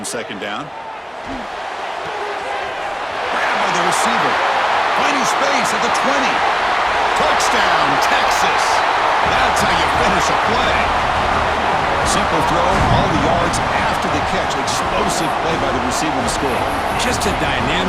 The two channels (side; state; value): both; identical; correlation 1.00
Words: second down. Grabbed by the receiver. Finding space at the 20. Touchdown, Texas. That's how you finish a play. Simple throw, all the yards after the catch. Explosive play by the receiver to score. Just a